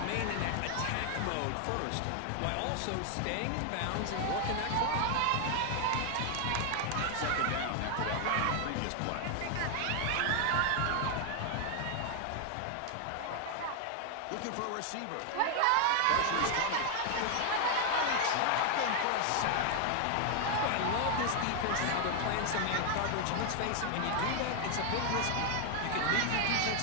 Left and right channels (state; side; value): different; both; correlation 0.01